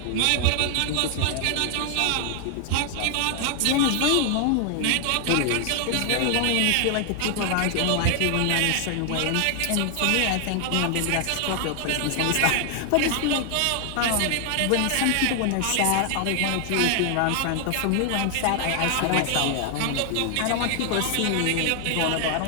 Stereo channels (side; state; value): both; different; correlation 0.00